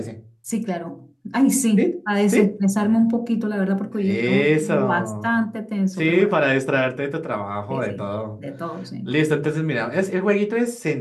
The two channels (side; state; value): both; identical; correlation 1.00